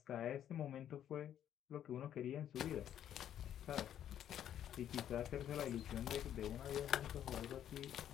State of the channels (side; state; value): right; quieter; 10.4 dB